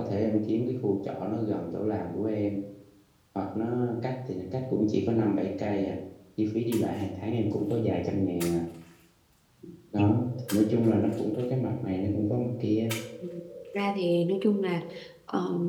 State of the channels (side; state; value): both; identical; correlation 1.00